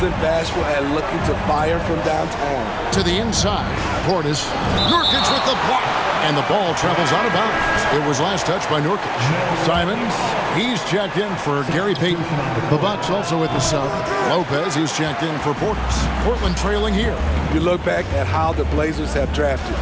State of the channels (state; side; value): identical; both; correlation 1.00